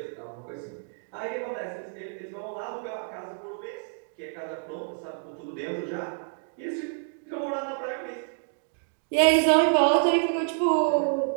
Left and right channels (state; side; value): silent; left; digital silence